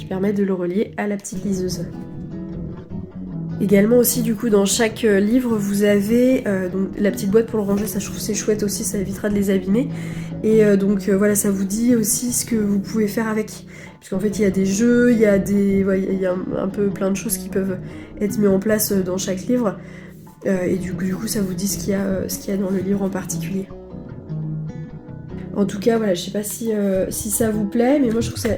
permet de le relier à la petite liseuse. Également aussi du coup dans chaque livre vous avez donc, la petite boîte pour le ranger, ça je trouve c'est chouette aussi, ça évitera de les abîmer. Et voilà, ça vous dit aussi ce que vous pouvez faire avec. Puisqu'en fait il y a des jeux, il y a un peu plein de choses qui peuvent être mises en place dans chaque livre. Et du coup ça vous dit ce qu'il y a dans le livre en particulier. En tout cas, voilà, je sais pas si ça vous plaît, mais moi je trouve que ça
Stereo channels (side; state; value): both; identical; correlation 1.00